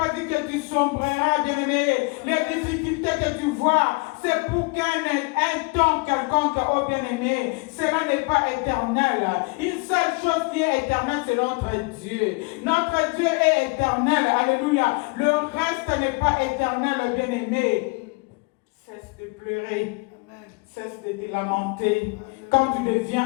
dit que tu sombreras, bien-aimé. Les difficultés que tu vois, c'est pour qu'un temps quelconque, oh bien-aimé, cela n'est pas éternel. Une seule chose qui est éternelle, c'est notre Dieu. Notre Dieu est éternel. Alléluia. Le reste n'est pas éternel, bien-aimé. Cesse de pleurer. Cesse de te lamenter. Quand tu deviens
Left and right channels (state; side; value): quieter; right; 29.2 dB